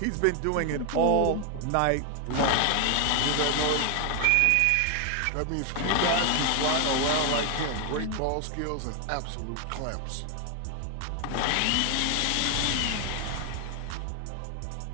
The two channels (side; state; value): both; different; correlation 0.00